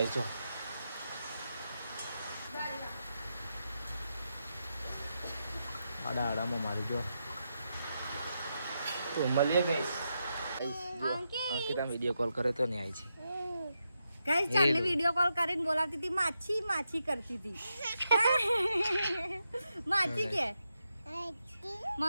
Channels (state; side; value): inverted; both; correlation -0.85